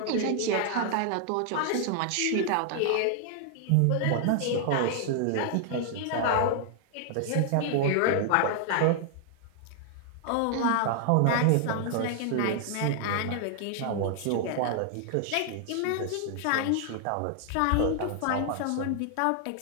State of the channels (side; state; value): both; different; correlation 0.00